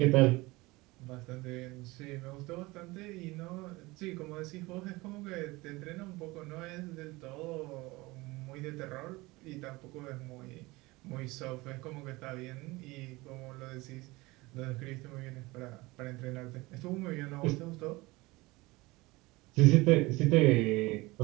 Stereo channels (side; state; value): left; quieter; 21.9 dB